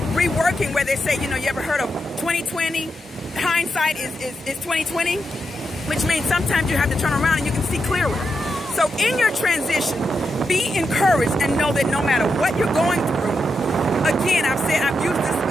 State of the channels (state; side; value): normal; both; correlation 0.85